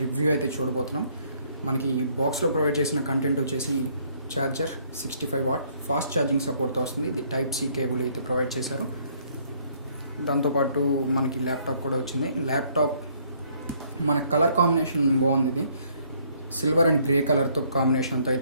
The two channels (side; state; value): both; inverted; correlation -0.65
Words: review అయితే చూడబోతున్నాం. మనకి ఈ బాక్స్లో ప్రొవైడ్ చేసిన కంటెంట్ వచ్చేసి ఛార్జర్ 65 వాట్ ఫాస్ట్ ఛార్జింగ్ సపోర్ట్తో వస్తుంది. ఇది టైప్ సి కేబుల్ అయితే ప్రొవైడ్ చేశారు. దాంతోపాటు మనకి ల్యాప్టాప్ కూడా వచ్చింది. ల్యాప్టాప్ మన కలర్ కాంబినేషన్ బాగుంది. ఇది సిల్వర్ అండ్ గ్రే కలర్తో కాంబినేషన్తో